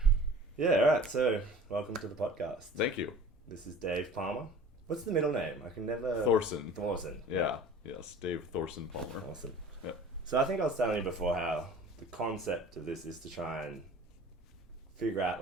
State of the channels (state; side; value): normal; both; correlation 0.44